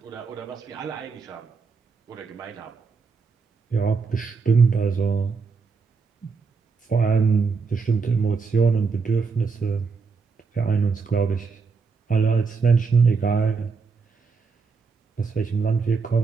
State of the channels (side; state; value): left; quieter; 4.9 dB